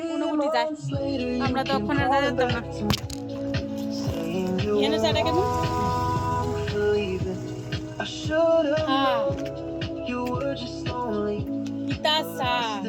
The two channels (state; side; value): identical; both; correlation 1.00